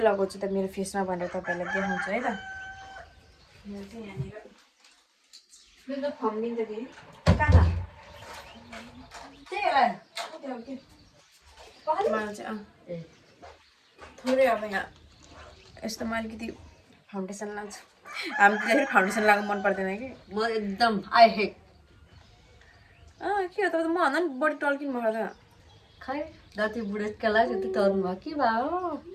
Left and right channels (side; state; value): both; identical; correlation 1.00